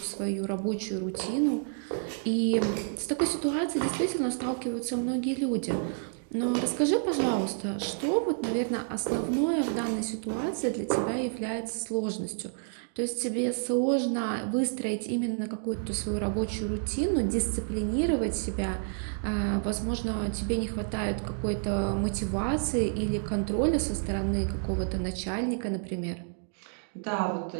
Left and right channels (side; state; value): left; silent; digital silence